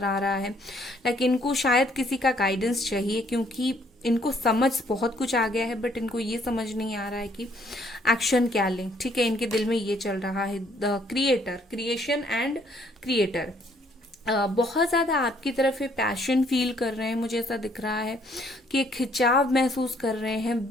आ रहा है, लाइक इनको शायद किसी का गाइडेंस चाहिए, क्योंकि इनको समझ बहुत कुछ आ गया है, बट इनको ये समझ नहीं आ रहा है कि एक्शन क्या लें। ठीक है, इनके दिल में ये चल रहा है, the creator, creation and creator. बहुत ज़्यादा आपकी तरफ ये पैशन फील कर रहे हैं, मुझे ऐसा दिख रहा है कि एक खिंचाव महसूस कर रहे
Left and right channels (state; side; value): normal; both; correlation 0.65